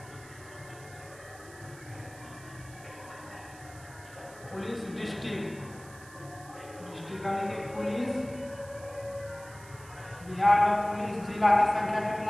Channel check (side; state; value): right; noise; hiss, 20 dB below the sound